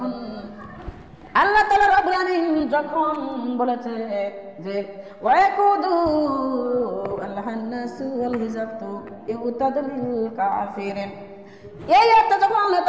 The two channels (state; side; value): identical; both; correlation 1.00